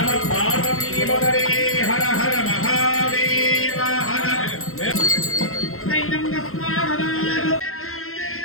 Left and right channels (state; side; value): late; right; 0.62 ms